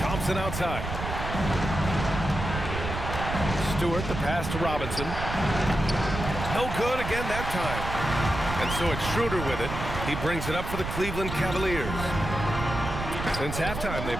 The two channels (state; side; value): noise; right; rumble, 5 dB below the sound